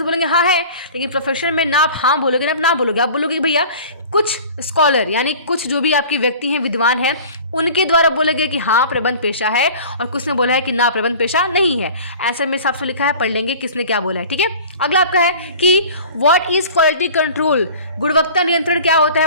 बोलेंगे हाँ है, लेकिन प्रोफेशन में ना आप हाँ बोलोगे ना आप ना बोलोगे। आप बोलोगे कि भैया कुछ स्कॉलर यानी कुछ जो भी आपके व्यक्ति हैं, विद्वान हैं, उनके द्वारा बोलेगे कि हाँ प्रबंध पेशा है, और कुछ ने बोला है कि ना प्रबंध पेशा नहीं है। आंसर में साफ लिखा है, पढ़ लेंगे किसने क्या बोला है, ठीक है। अगला आपका है कि व्हाट इज क्वालिटी कंट्रोल। गुणवत्ता नियंत्रण क्या होता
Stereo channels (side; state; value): both; inverted; correlation -0.42